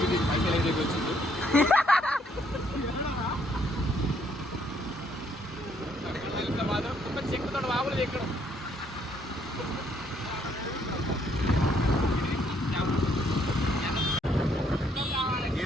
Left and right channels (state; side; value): normal; both; correlation 0.69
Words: పైసలు ఏదైతే వచ్చింది. మాత్రం చెక్కుతో బాబులు ఎక్కడం.